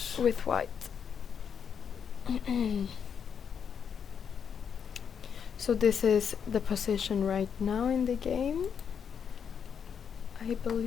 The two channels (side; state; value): right; quieter; 7.3 dB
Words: with White. So this is the position right now in the game, I